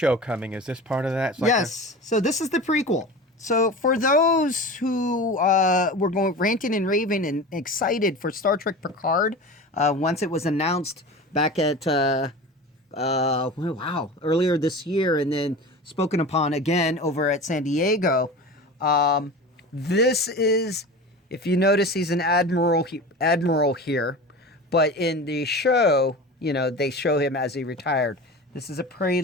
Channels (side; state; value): both; normal; correlation 0.33